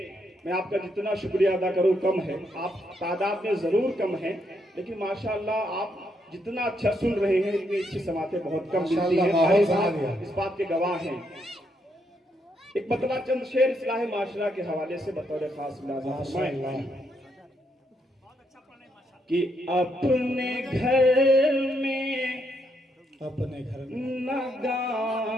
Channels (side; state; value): both; normal; correlation 0.77